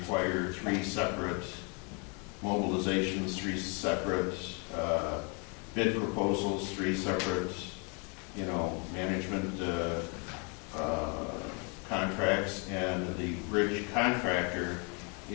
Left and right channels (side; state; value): right; quieter; 34.6 dB